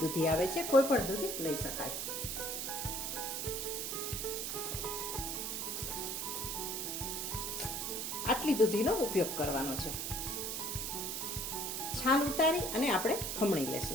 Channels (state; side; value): noise; right; hiss, 2 dB below the sound